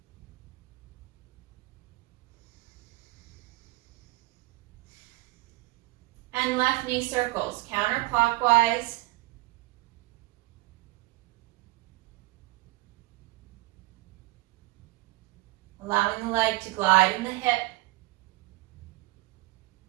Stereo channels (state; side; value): quieter; left; 21.1 dB